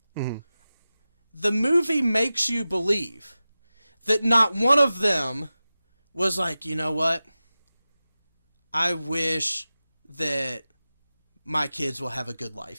the movie makes you believe that not one of them was like, you know what? I wish that my kids will have a good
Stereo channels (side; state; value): both; inverted; correlation -0.95